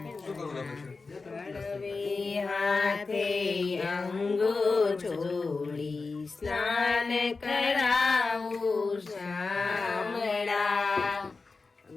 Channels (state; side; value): quieter; right; 4.1 dB